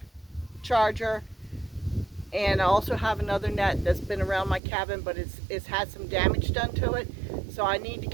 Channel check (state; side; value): drops out; left; at 4.6 s